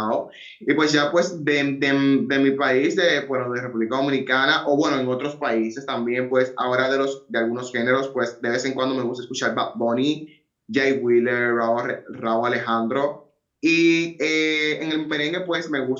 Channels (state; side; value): identical; both; correlation 1.00